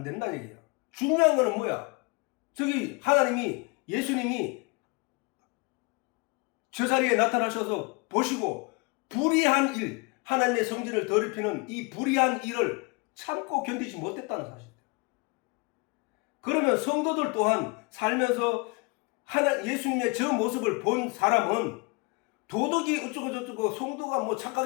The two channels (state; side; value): quieter; right; 29.1 dB